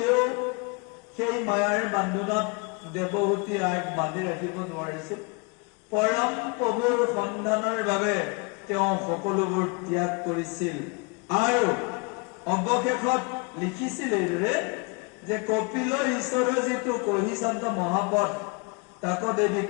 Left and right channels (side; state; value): right; quieter; 31.7 dB